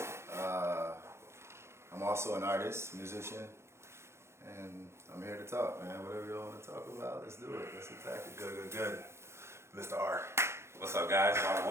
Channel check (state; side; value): late; left; 0.13 ms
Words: I'm also an artist, musician, and I'm here to talk, man. Whatever you want to talk about, let's do it. Let's attack it. Good. Mr. R. What's up, guys? I'm